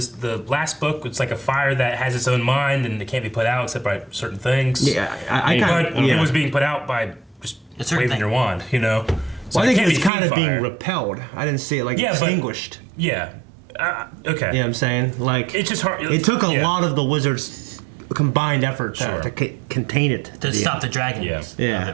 last book. It's like a fire that has its own mind and it can't be put out except by certain things. Yeah, I But kind of. it was being put out by just A certain waving thing. your wand. So Well, I it think can't it's be kind of Fiend being Fire. repelled. I didn't see it like Yeah, but- extinguished. Yeah. Okay. You know what I'm saying? Like It's just hard. it took a yeah. lot of the wizards' combined effort Sure. to contain it. To stop the dragons Yeah. Yeah. of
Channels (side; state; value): left; drops out; at 10.1 s